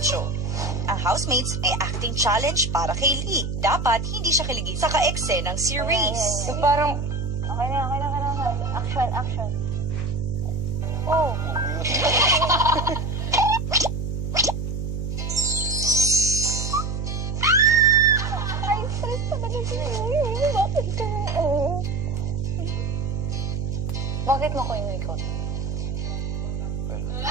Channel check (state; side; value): noise; right; hum, 3 dB below the sound